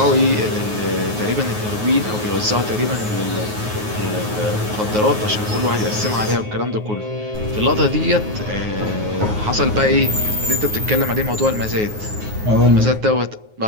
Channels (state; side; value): late; left; 9.4 ms